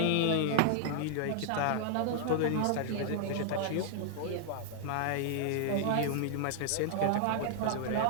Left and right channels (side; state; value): both; different; correlation -0.01